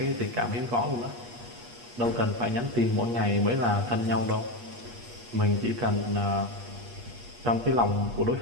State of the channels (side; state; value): left; late; 8.4 ms